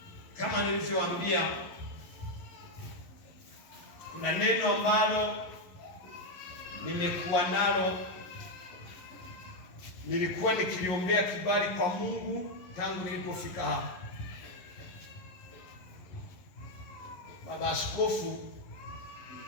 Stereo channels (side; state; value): right; late; 11 ms